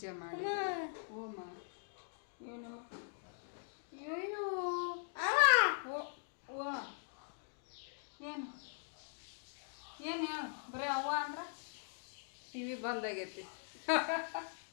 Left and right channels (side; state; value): right; silent; digital silence